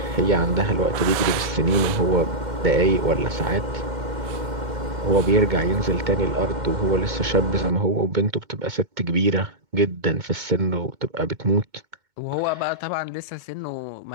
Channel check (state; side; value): late; left; 2.2 ms